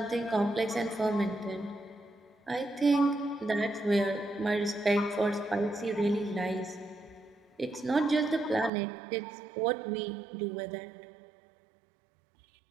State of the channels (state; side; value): drops out; left; at 8.7 s